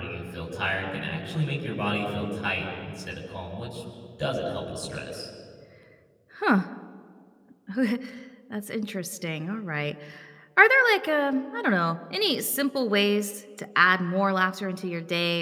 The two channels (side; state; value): both; identical; correlation 1.00